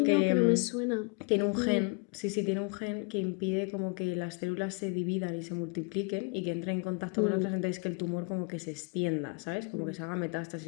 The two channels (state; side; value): quieter; right; 33.4 dB